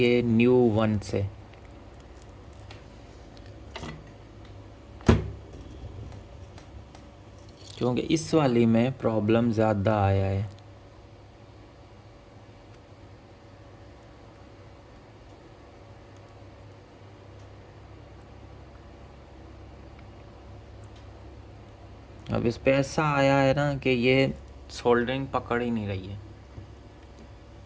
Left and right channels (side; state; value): both; identical; correlation 1.00